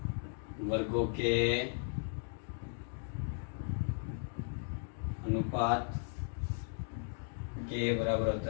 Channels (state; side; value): silent; right; digital silence